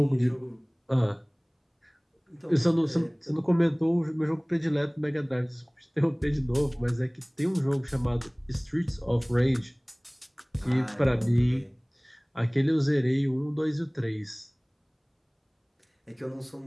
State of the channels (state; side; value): identical; both; correlation 1.00